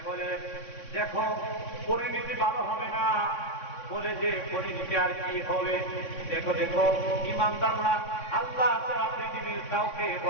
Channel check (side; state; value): right; late; 3.6 ms